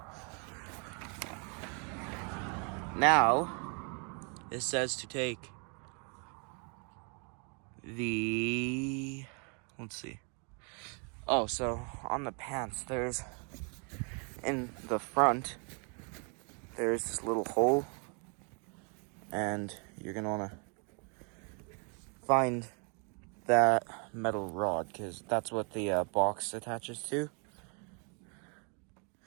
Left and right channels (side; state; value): left; quieter; 37.0 dB